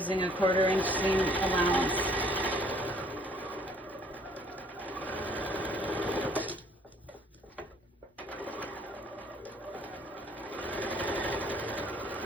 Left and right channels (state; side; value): normal; both; correlation 0.60